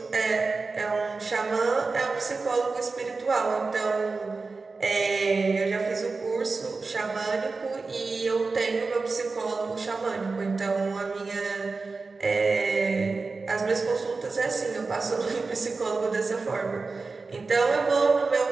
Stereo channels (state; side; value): quieter; left; 4.0 dB